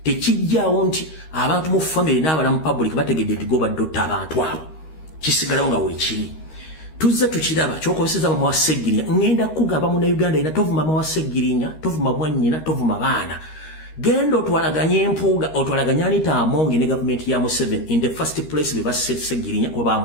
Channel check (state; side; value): late; right; 13 ms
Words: tekijjaawo nti abantu mu family n'abalamu public bategedde nti gobadde otta abantu abo kisigalawo nga weekiri tuzze tukiraba kyokobeseza mama wa Sseggirinya ngenda kugamba Munnayuganda ina tovuma mama wa Sseggirinya tovuma mwannyina tovuma baana genda otwalaganye empuuga otwalaganye Anita Amongi ne gavumenti ya Museveni in the first place be basse Sseggirinya kuba